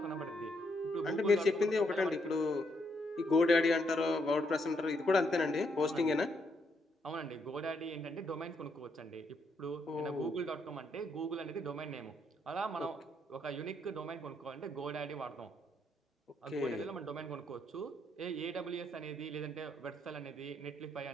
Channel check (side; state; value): both; normal; correlation 0.75